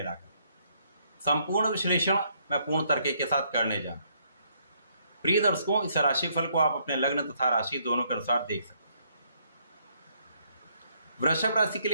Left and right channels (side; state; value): both; inverted; correlation -0.70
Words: संपूर्ण विश्लेषण मैं पूर्ण तर्क के साथ करने जा रहा हूं। प्रिय दर्शकों, इस राशिफल को आप अपने लग्न तथा राशि दोनों के अनुसार देख सकते हैं। वृषभ राशि के